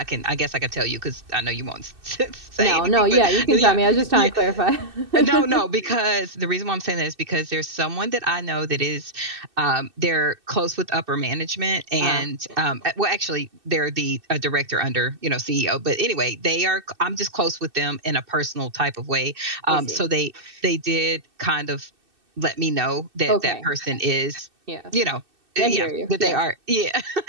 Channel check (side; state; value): left; late; 2.6 ms